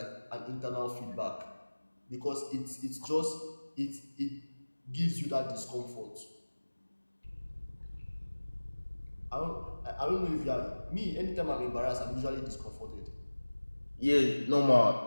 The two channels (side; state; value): both; inverted; correlation -1.00